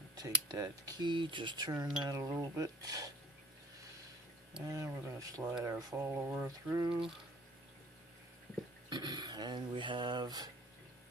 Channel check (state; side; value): normal; both; correlation 0.51